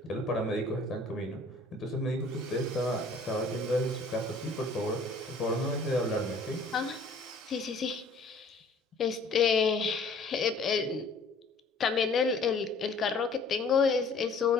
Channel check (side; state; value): right; quieter; 3.2 dB